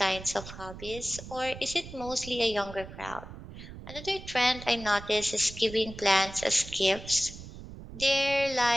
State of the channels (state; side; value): noise; right; rumble, 13 dB below the sound